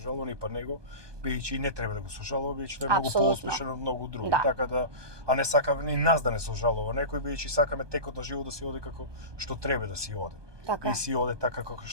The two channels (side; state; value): left; late; 1.2 ms